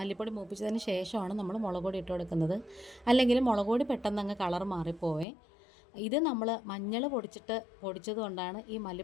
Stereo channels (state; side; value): drops out; right; at 5.2 s